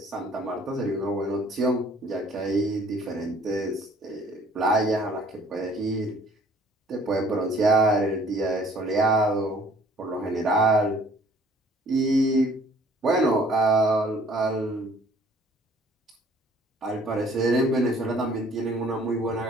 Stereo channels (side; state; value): both; normal; correlation 0.56